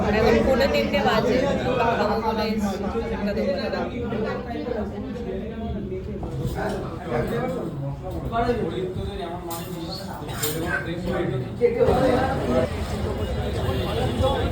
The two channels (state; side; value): identical; both; correlation 1.00